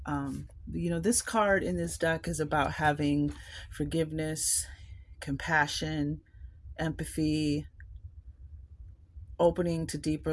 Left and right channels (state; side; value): identical; both; correlation 1.00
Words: this card in this deck is about having forgiveness, compassion, empathy, opening to